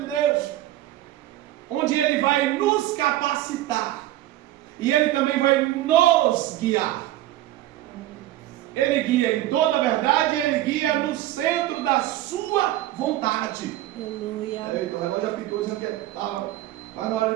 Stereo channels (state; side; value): quieter; left; 14.6 dB